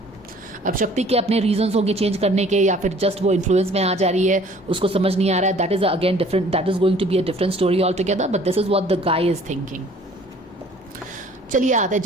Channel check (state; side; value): normal; both; correlation 0.53